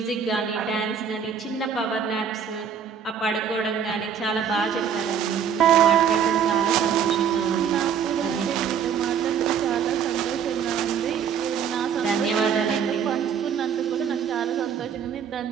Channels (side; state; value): left; quieter; 7.6 dB